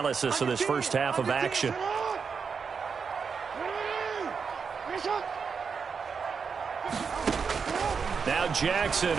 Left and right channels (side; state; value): left; quieter; 5.8 dB